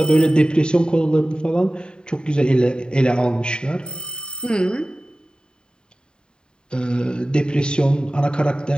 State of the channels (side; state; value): right; late; 0.049 ms